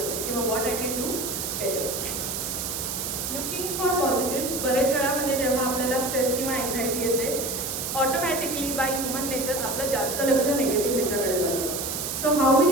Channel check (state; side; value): noise; right; hiss, 3 dB below the sound